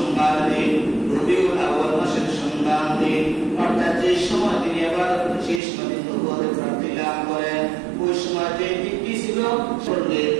দিন, রবিউল আউয়াল মাসের সোমবার দিন। অর্থাৎ যে সময় তিনি আবার শেষ দিন নবুয়তের প্রাপ্তি লাভ করেন, ওই সময় যে দিনটি ছিল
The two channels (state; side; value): drops out; left; at 5.6 s